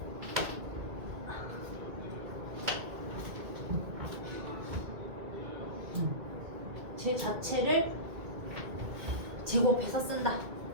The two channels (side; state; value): left; late; 2.2 ms